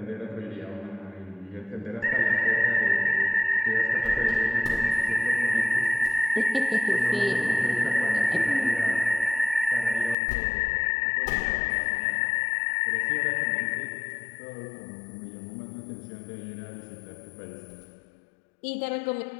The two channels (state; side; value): drops out; right; at 10.2 s